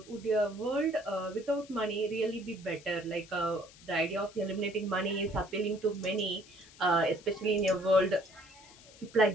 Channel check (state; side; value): noise; left; hiss, 22 dB below the sound